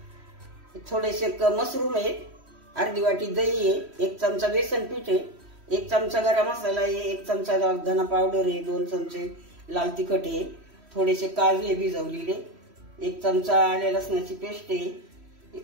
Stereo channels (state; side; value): late; left; 3.1 ms